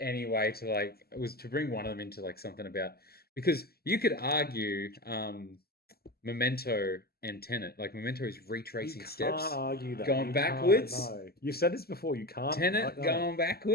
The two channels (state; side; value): late; right; 0.45 ms